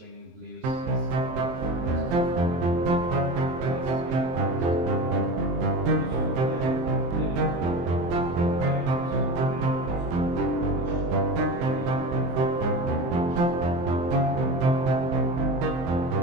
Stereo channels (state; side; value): late; left; 23 ms